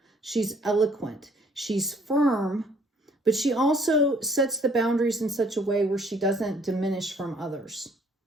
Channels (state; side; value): normal; both; correlation 0.61